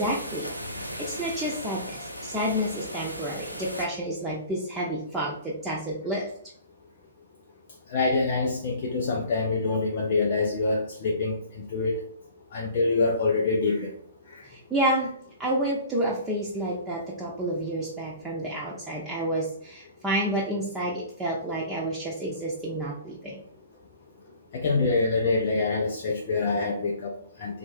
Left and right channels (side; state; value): both; inverted; correlation -0.45